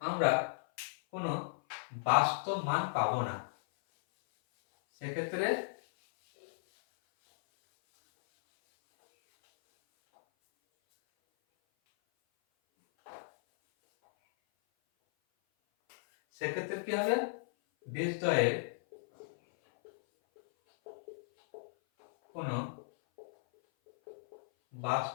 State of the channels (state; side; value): silent; right; 55 dB below the other